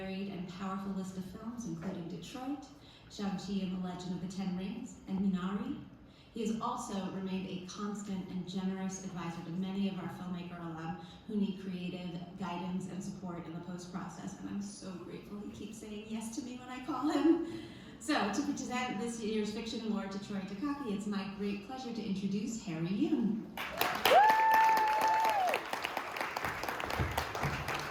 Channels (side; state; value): both; identical; correlation 1.00